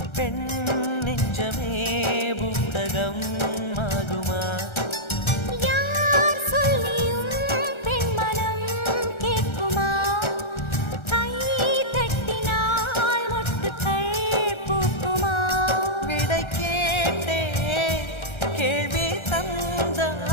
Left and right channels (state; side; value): late; right; 1.3 ms